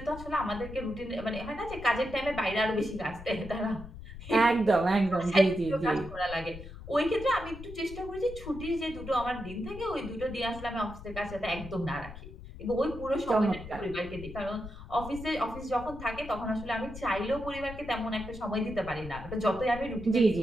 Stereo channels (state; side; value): noise; left; rumble, 13 dB below the sound